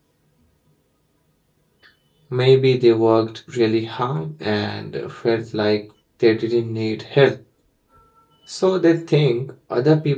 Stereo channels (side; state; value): both; identical; correlation 1.00